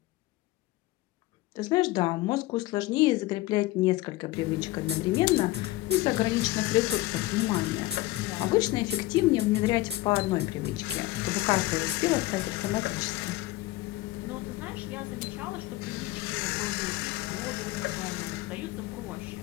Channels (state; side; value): quieter; right; 18.1 dB